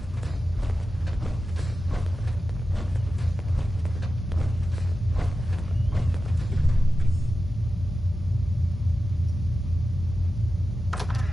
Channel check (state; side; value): normal; both; correlation 0.93